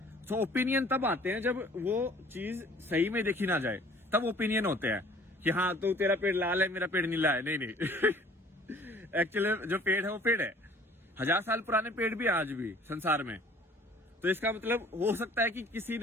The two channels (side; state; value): both; normal; correlation 0.52